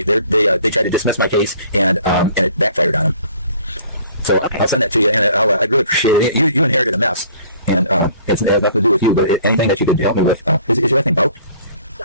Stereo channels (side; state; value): both; inverted; correlation -0.54